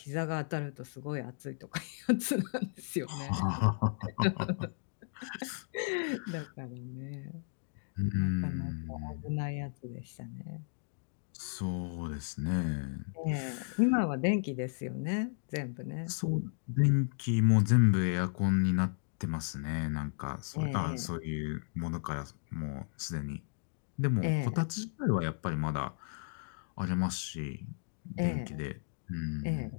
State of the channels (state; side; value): silent; right; digital silence